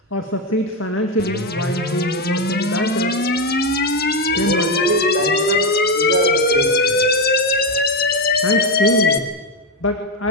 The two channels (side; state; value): both; normal; correlation 0.07